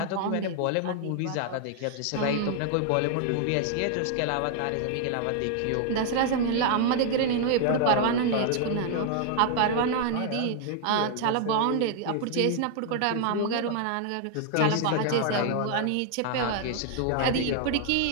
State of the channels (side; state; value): both; different; correlation 0.00